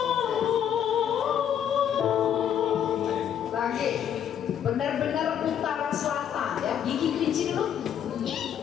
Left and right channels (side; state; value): right; quieter; 9.3 dB